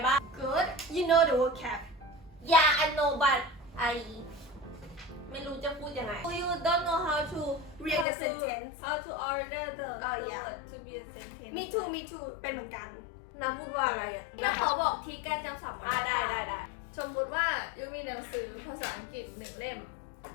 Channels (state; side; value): drops out; right; at 8.1 s